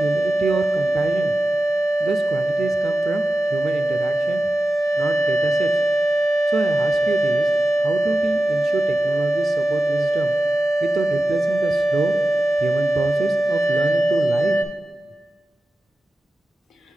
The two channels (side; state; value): both; normal; correlation 0.94